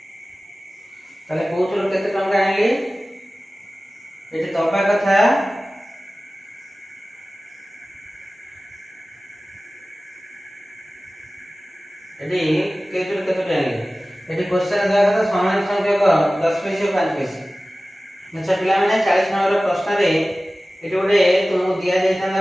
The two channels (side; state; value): both; normal; correlation 0.97